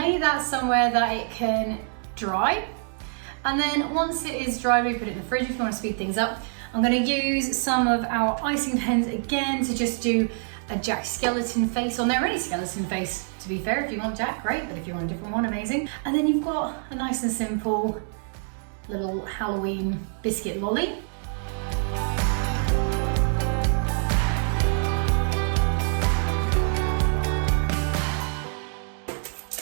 that somewhere that it can dry. And then once it is dry, we put it in the fridge if you want to speed things up. I'm going to use some of our icing pens again to just do a Jack skeleton face on there, any skeleton face. To be fair, if you want Jack, great, but if you want a different one, amazing. And then you've got a nice and simple little Halloween biscuit lolly.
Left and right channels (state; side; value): silent; left; 61 dB below the other